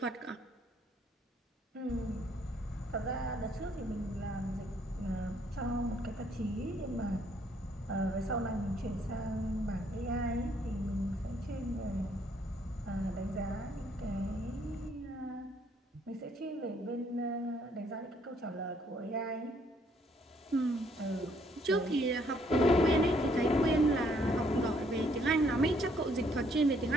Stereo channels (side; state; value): both; normal; correlation 0.67